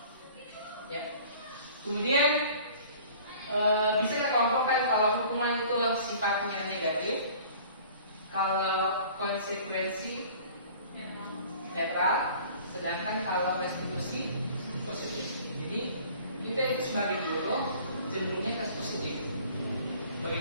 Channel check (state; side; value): inverted; both; correlation -0.49